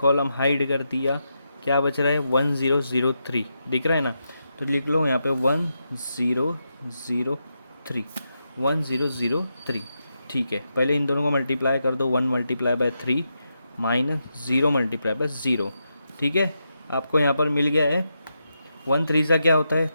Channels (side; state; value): both; inverted; correlation -0.85